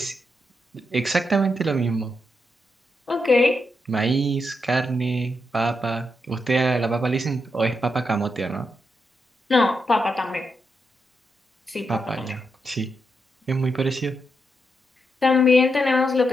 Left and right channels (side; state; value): both; normal; correlation 0.83